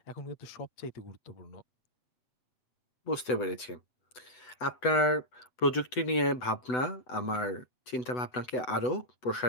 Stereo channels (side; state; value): right; late; 8.0 ms